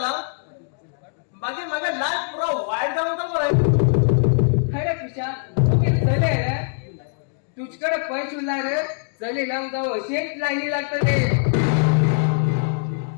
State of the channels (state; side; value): silent; right; digital silence